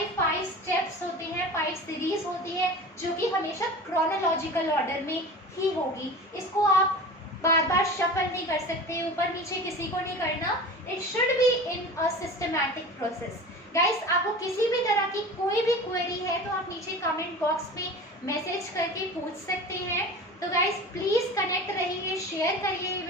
5 स्टेप्स होते हैं, 5 सीरीज होती है जो कि हमेशा क्रोनोलॉजिकल ऑर्डर में ही होगी। इसको आप बार बार शफल नहीं कर सकते, ऊपर नीचे किसी को नहीं करना। It should be in a systematic process. Guys, आपको किसी भी तरह की कोई भी क्वेरी है तो आप नीचे कमेंट बॉक्स में मैसेज करके पूछ सकते हैं। तो गाइस, प्लीज कनेक्ट रहिए, शेयर करिए ये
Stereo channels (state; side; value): normal; both; correlation 0.35